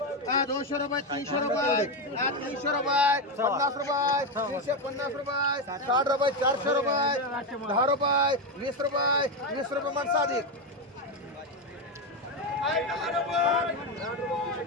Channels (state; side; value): normal; both; correlation 0.10